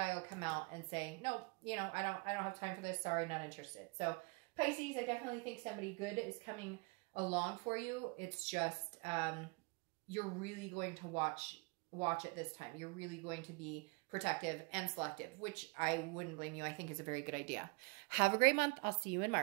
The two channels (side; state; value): left; quieter; 29.5 dB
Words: will come out and say, no, you know, I don't have time for this. Sorry, not interested. So Pisces, I definitely think somebody good is coming along for you. It's just, you're really going to watch it this time. You're really going to be protective and selective, which I wouldn't blame you. I think is a very good idea. Have a great month. I'll see you in